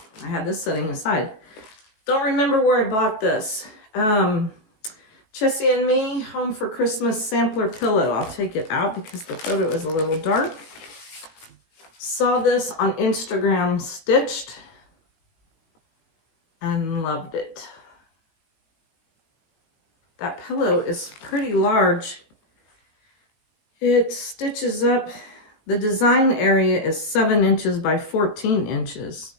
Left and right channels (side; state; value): right; late; 19 ms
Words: I had this sitting aside. Don't remember where I bought this. Chessie and Me Home for Christmas sampler pillow. I'll take it out because the photo is a little dark. Saw this on Instagram stitched and loved it. That pillow is pretty large. It stitches up. The design area is 7 inches by 14 inches.